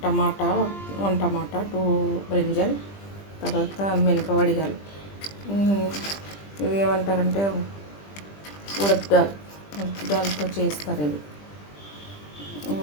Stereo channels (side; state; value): right; late; 20 ms